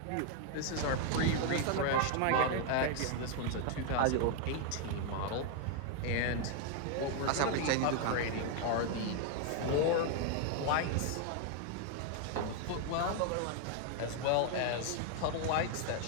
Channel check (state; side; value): different; both; correlation 0.01